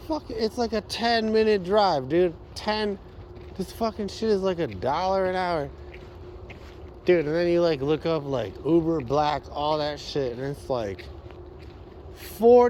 fuck, it's like a 10-minute drive, dude. This fucking shit is like $1 an hour. Dude, and then you like look up like Uber Black, all that shit, and it's like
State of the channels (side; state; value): both; identical; correlation 1.00